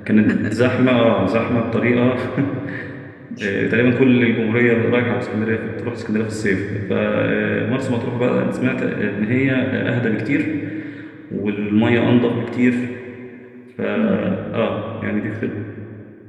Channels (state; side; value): identical; both; correlation 1.00